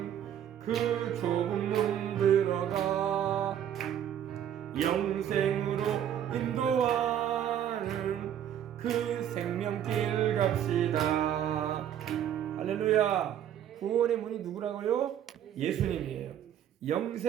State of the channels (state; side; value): quieter; left; 10.1 dB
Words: 그 좁은 문 들어가 영생으로 인도하는 그 생명길 갑시다. 할렐루야. 구원의 문이 누구라고요? 예수님이에요.